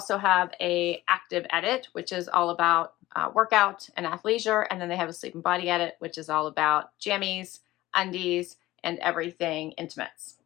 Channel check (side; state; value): right; quieter; 17.0 dB